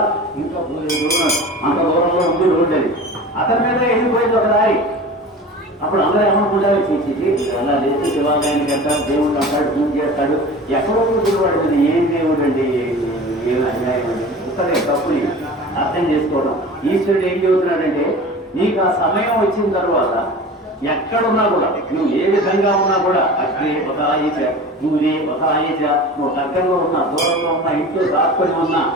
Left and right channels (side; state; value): both; normal; correlation 0.37